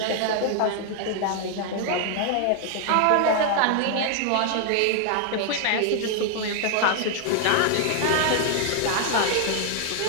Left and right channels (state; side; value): different; both; correlation 0.00